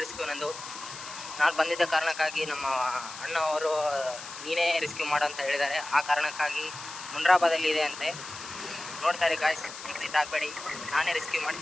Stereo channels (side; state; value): left; noise; hiss, 12 dB below the sound